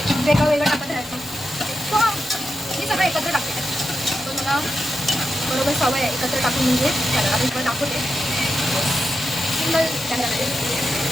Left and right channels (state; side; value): normal; both; correlation 0.87